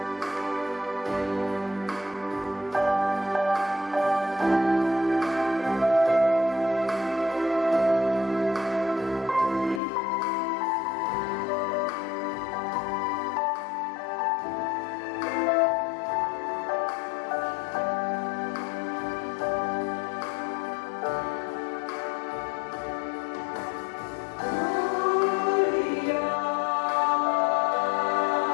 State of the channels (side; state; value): right; drops out; at 9.8 s